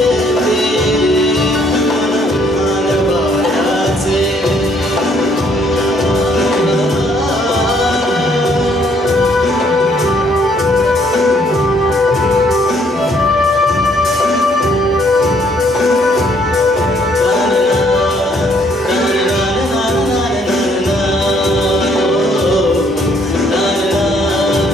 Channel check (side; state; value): both; normal; correlation 0.66